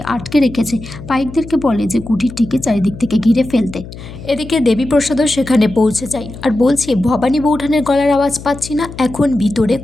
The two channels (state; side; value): noise; left; hum, 14 dB below the sound